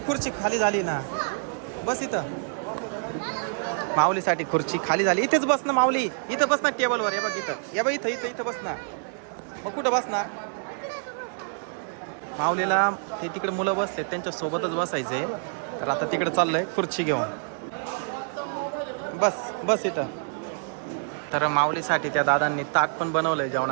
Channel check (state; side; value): silent; left; digital silence